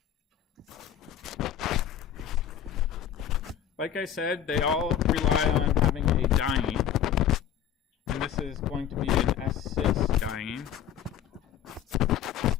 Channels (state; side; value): quieter; right; 9.7 dB